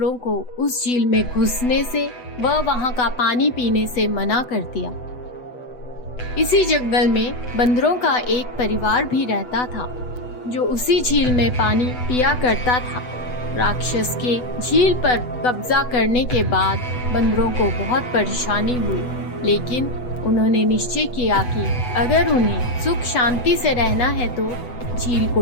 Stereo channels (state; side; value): late; right; 8.1 ms